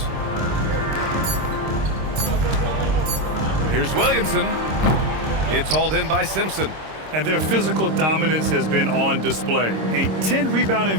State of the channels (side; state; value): left; late; 26 ms